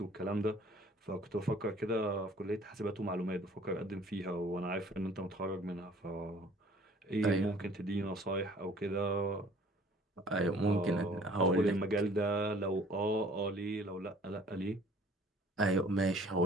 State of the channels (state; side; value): normal; both; correlation 0.53